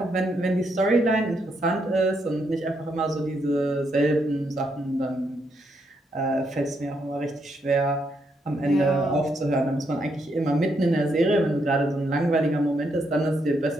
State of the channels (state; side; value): normal; both; correlation 0.77